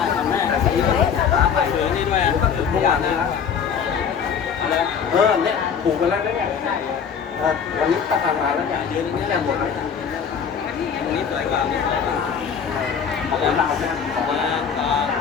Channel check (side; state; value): right; quieter; 7.1 dB